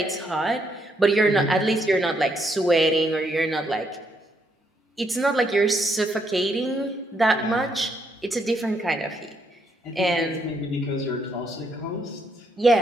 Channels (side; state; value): both; normal; correlation 0.74